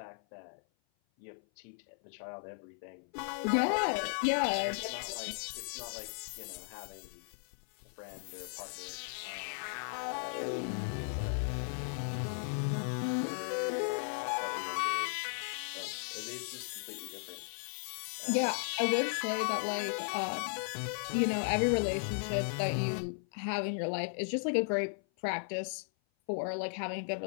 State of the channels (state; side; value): silent; right; 54 dB below the other